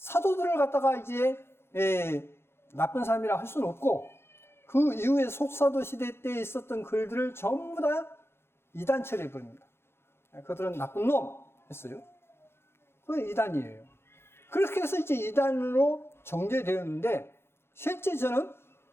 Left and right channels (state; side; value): late; right; 0.12 ms